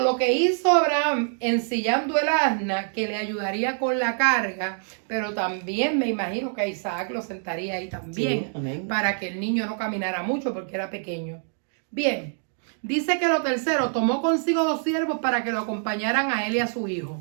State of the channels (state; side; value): silent; left; 61 dB below the other